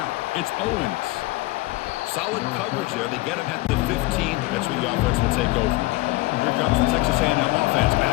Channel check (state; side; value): quieter; right; 20.7 dB